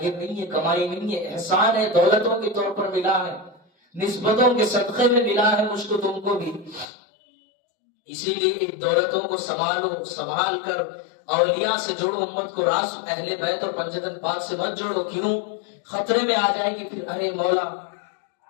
نہیں ہے، کمائی نہیں ہے، احسان ہے، دولتوں کے طور پر ملا ہے، نسبتوں کے صدقے میں ملا ہے مجھ کو تم کو بھی۔ اسی لیے ایک دولتوں کو سنبھالو، سنبھال کر اولیاء سے جوڑو، امت کو راس اہل بیت اور پنجتن پاک سے مت جوڑو، کیوں؟ خطرے میں آ جائے گی پھر، ارے مولا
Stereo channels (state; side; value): drops out; right; at 6.9 s